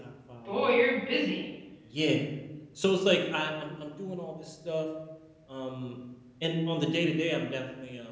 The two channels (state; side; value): identical; both; correlation 1.00